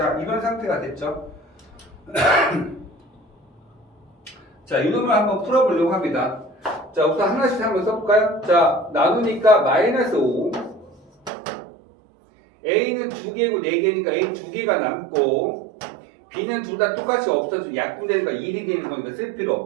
이런 상태가 됐죠? 자, 이놈을 한번 풀어보려고 합니다. 자, 우선 하나씩 한번 써볼까요? 자, 나누니까 마이너스 5 A는 2개고 4개니까 A 2개가 남고 B는 둘 다 똑같이 없어지고 약분되니까 1이 되는 거니까 쓸 필요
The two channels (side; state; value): left; drops out; at 11.3 s